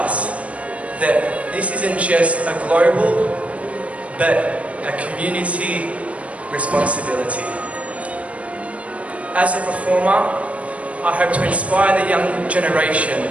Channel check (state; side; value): late; left; 0.064 ms